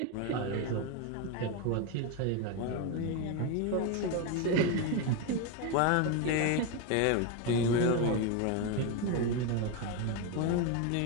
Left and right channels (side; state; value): both; different; correlation 0.03